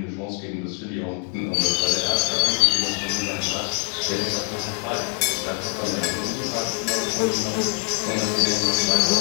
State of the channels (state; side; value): quieter; right; 30.7 dB